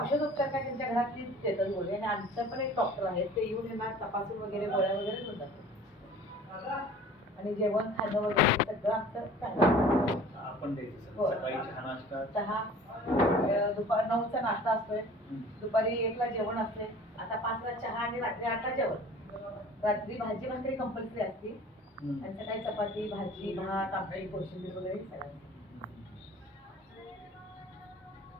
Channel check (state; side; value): normal; both; correlation 0.45